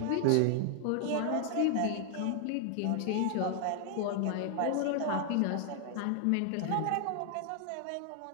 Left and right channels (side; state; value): both; different; correlation 0.00